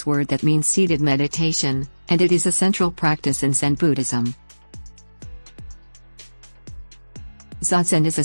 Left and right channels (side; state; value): both; inverted; correlation -1.00